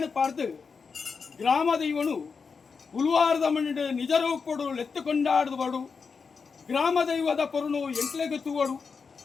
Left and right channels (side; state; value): right; quieter; 5.3 dB